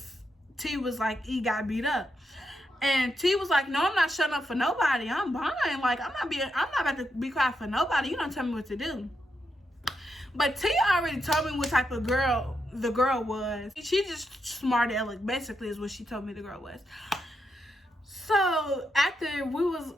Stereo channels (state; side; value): normal; both; correlation 0.83